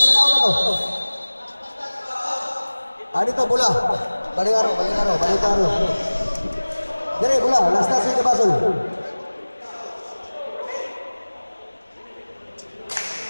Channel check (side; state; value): both; inverted; correlation -1.00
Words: na ako na to. Dito bola. Balik aro. Dire bola, last na sa basol.